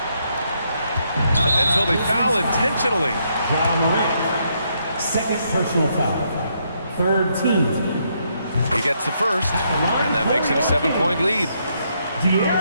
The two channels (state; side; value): inverted; both; correlation -0.75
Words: And so they foul intentionally. John Morant. Second personal foul. Third team. He gets the first, and that makes it a 7-point lead.